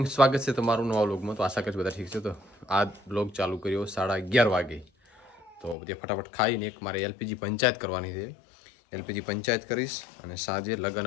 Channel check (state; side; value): drops out; right; at 5.8 s